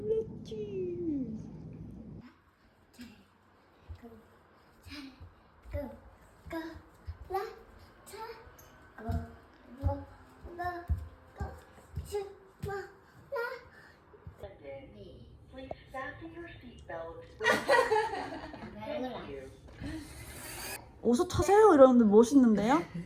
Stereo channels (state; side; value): identical; both; correlation 1.00